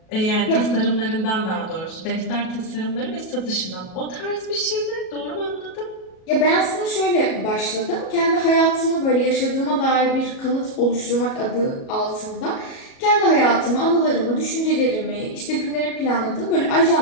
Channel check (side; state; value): right; late; 37 ms